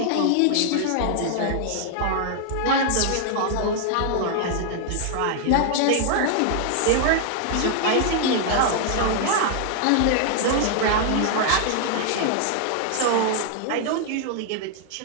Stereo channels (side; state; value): both; different; correlation 0.00